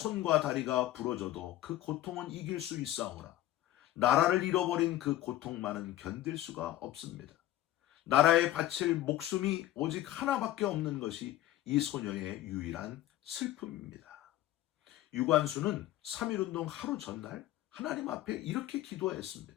다리가 부러져도 그 고통은 이길 수 있사오나 나라를 잃어버린 그 고통만은 견딜 수가 없습니다. 나라에 바칠 목숨이 오직 하나밖에 없는 것이 이 소녀의 유일한 슬픔입니다. 유관수는 3.1운동 하루 전날 하나님 앞에 이렇게 기도했습니다.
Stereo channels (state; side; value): quieter; right; 14.4 dB